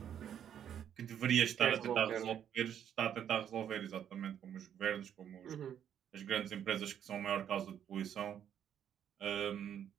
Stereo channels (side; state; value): left; quieter; 9.4 dB